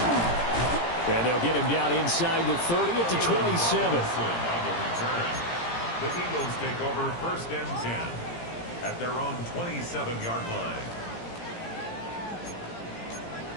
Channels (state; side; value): late; right; 17 ms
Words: And they'll get him down inside the 30 at the 27. On the return, the Eagles take over first and 10 at their own 27-yard line.